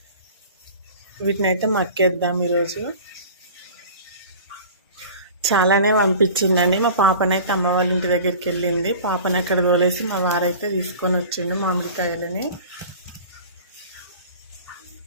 వీటినైతే మక్కేద్దాం ఈరోజు. చాలానే పంపించిందండి. మా పాపనైతే అమ్మ వాళ్ళ ఇంటి దగ్గరికి వెళ్ళింది. పాపని అక్కడ తోలేసి మా వారైతే తీసుకొని వచ్చిండు మామిడికాయలని.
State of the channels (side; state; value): both; inverted; correlation -0.41